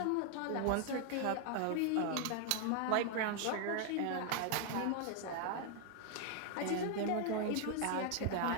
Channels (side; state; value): both; different; correlation 0.00